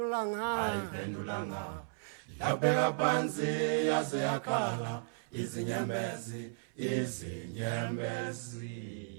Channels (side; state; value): left; silent; 54 dB below the other